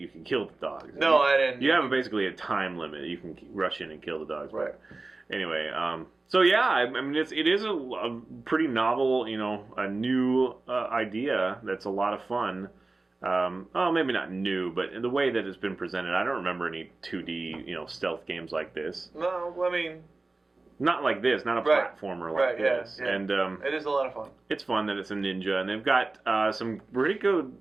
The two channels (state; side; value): quieter; left; 3.4 dB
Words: can kill the dogs. No, I didn't. You have basically a time limit. You can rush in and kill the dogs. Right. Anyway, so yeah, I mean, it is a pretty novel, a new idea that's a lot of fun. Maybe not new, but in the way that it's been presented, I don't remember any 2D, stealth games like this. No, I mean... Not like this, not a platformer like this. Yeah. And it is a lot of fun. It's fun that it's a ninja, and they've got some pretty good